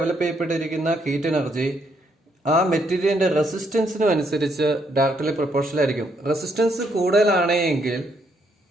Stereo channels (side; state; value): both; normal; correlation 0.73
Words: ചെയ്യപ്പെട്ടിരിക്കുന്ന ഹീറ്റ് എനർജി ആ മെറ്റീരിയലിന്റെ റെസിസ്റ്റൻസിനും അനുസരിച്ച് ഡയറക്ട്ലി പ്രൊപ്പോർഷണൽ ആയിരിക്കും. റെസിസ്റ്റൻസ് കൂടുതലാണെങ്കിൽ